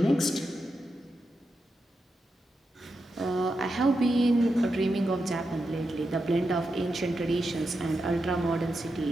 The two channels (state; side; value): normal; both; correlation 0.87